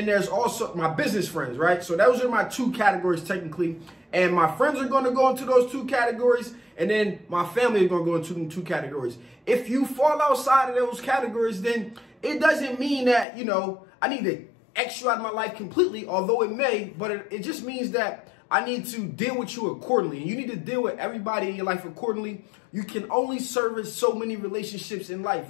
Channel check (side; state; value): right; drops out; at 13.2 s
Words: there's also my business friends, right? So those are my two categories technically. And my friends are going to go into those two categories. And then my family is going to go into them two categories. If you fall outside of those categories, then it doesn't mean that, I need to X you out of my life completely, although it may, but it just means that I need to deal with you accordingly. And you need to deal with everybody in your life accordingly. You can only service so many relationships in life,